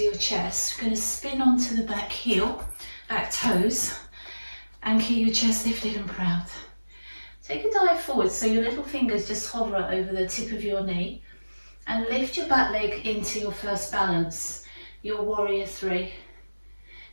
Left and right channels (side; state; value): both; inverted; correlation -1.00